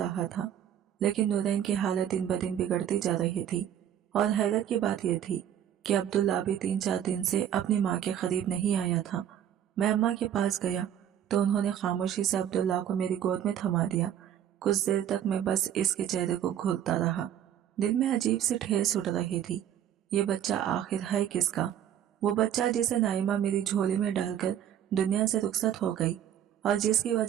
था। लेकिन नूरैन की हालत दिन ब दिन बिगड़ती जा रही थी, और हैरत की बात यह थी कि अब्दुल्ला भी 3-4 दिन से अपनी माँ के करीब नहीं आया था। मैं अम्मा के पास गया तो उन्होंने खामोशी से अब्दुल्ला को मेरी गोद में थमा दिया। कुछ देर तक मैं बस इसके चेहरे को घूरता रहा। दिल में अजीब सी ठेस उठ रही थी। ये बच्चा आखिर है किसका? वो बच्चा जिसे नाइमा मेरी झोली में डालकर दुनिया से रुखसत हो गई, और जिसकी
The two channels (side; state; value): left; quieter; 10.2 dB